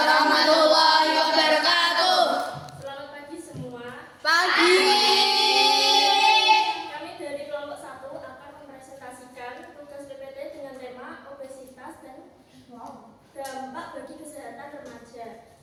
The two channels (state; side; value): identical; both; correlation 1.00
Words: wabarakatuh. Selamat pagi semua. Pagi. Kami dari kelompok 1 akan mempresentasikan tugas PPT dengan tema obesitas dan dampak bagi kesehatan remaja.